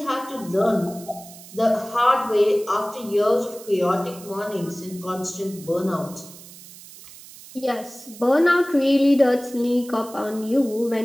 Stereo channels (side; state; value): right; noise; hiss, 18 dB below the sound